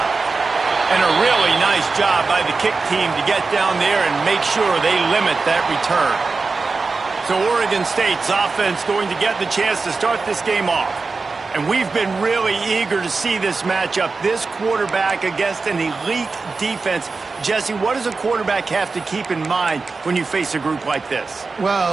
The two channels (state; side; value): quieter; left; 4.2 dB